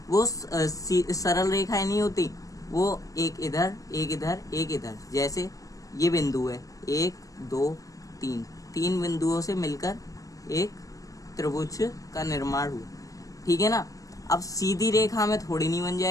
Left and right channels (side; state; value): right; late; 0.16 ms